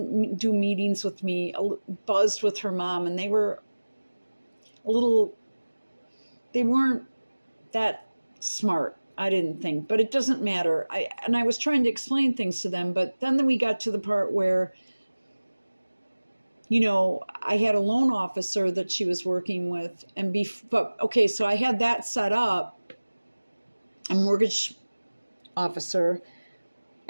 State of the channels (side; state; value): both; inverted; correlation -1.00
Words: do meetings with me, buzzed with her mom, and they weren't that smart, I didn't think, but it doesn't matter. I was trying to explain things to them, but then we got to the part where, I had a loan officer that she was working with, so I had that set up, a mortgage officer,